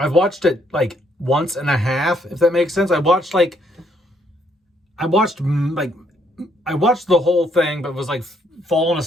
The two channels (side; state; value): both; normal; correlation 0.70